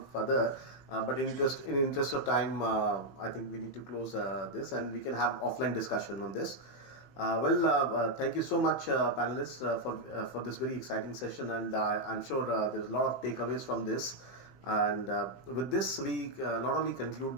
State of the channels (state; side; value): late; right; 15 ms